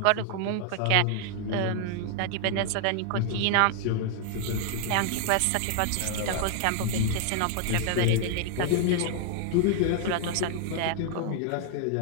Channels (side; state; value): both; different; correlation 0.00